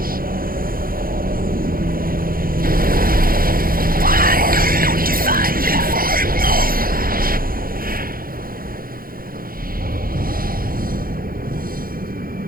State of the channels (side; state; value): left; late; 0.42 ms